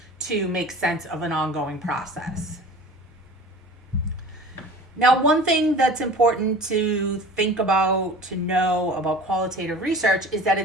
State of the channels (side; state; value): both; normal; correlation 0.40